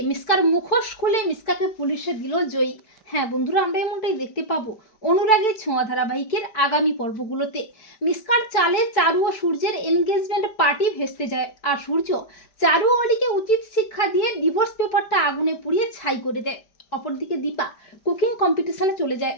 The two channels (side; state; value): right; late; 5.0 ms